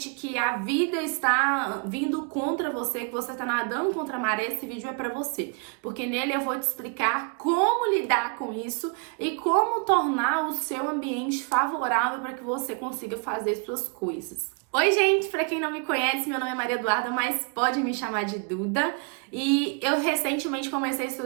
que a vida está vindo contra você, que você está nadando contra a maré, esse vídeo é para você, porque nele eu vou te explicar como lidar com isso e como tornar o seu ambiente favorável para que você consiga fazer suas coisas. Oi, gente! Para quem não me conhece, meu nome é Maria Eduarda, mas pode me chamar de Duda. E eu recentemente comecei a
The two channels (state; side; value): quieter; left; 36.5 dB